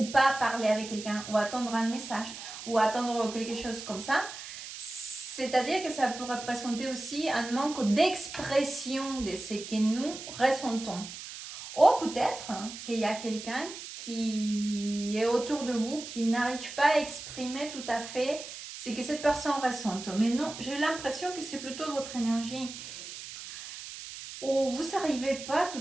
pas parler avec quelqu'un ou attendre un message ou attendre quelque chose comme ça, c'est-à-dire que ça peut représenter aussi un manque d'expression de ce que nous ressentons. Ou peut-être qu'il y a quelqu'un qui est autour de vous qui n'arrive pas à exprimer tout à fait ce que cette personne ressente. Mais non, j'ai l'impression que c'est plutôt votre énergie où vous n'arrivez pas tout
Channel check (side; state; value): right; noise; hiss, 11 dB below the sound